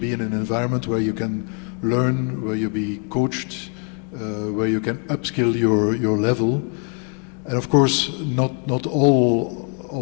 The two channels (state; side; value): quieter; right; 37.8 dB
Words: in an environment where you can learn, where you be coached, where you can upskill your level. And of course, not all